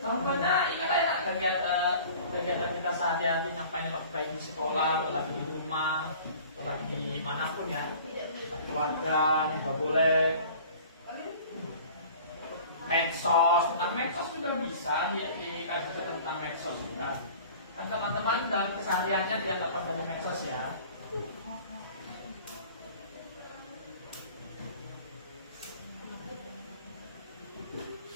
contohnya ingat ya kegiatan kita sehari-hari ngapain, baik di sekolah, lagi di rumah, lagi di manapun ya, keluarga juga boleh. Medsos, tentang medsos juga bisa dikasih tentang medsos juga. Kan teman-teman dalam kesehariannya dia dapat dari medsos ya.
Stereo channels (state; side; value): inverted; both; correlation -0.46